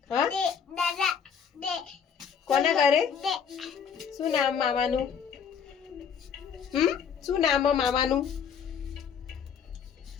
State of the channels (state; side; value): quieter; right; 7.2 dB